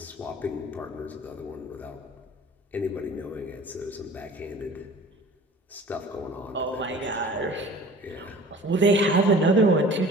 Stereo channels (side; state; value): both; normal; correlation 0.44